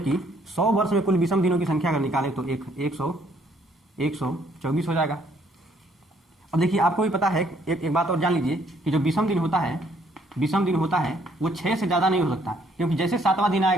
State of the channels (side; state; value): both; normal; correlation 0.66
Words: 100 वर्ष में कुल विषम दिनों की संख्या अगर निकालें तो 124 हो जाएगा। अब देखिए, आपको भी पता है, एक बात और जान लीजिए कि जो विषम दिन होता है विषम दिन होता है वो 6 से ज़्यादा नहीं हो सकता, क्योंकि जैसे 7वां दिन